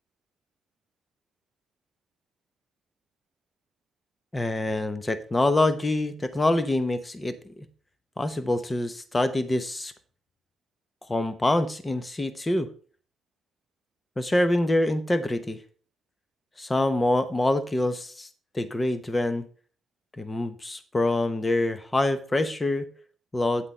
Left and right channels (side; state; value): both; normal; correlation 0.93